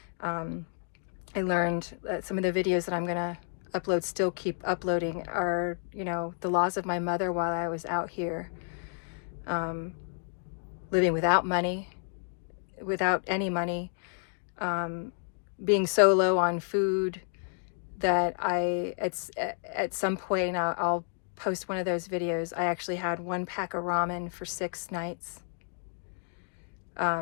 I learned some of the videos that I'm going to upload, still keep uploading, are, you know, the loss of my mother while I was out here, living without money, without any money, being so low on food that at some point, I'll post one of those videos, I actually had 1 pack of ramen for 6 nights.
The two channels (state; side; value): silent; right; digital silence